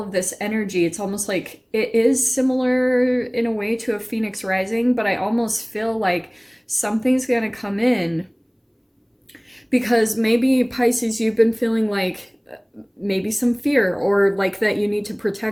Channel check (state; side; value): identical; both; correlation 1.00